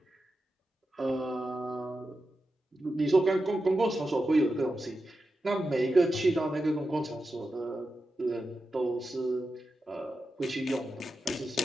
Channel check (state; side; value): normal; both; correlation 0.90